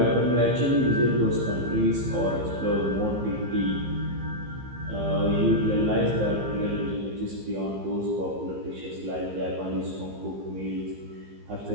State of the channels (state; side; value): late; left; 15 ms